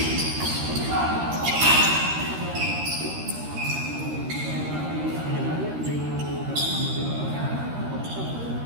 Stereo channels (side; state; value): left; late; 13 ms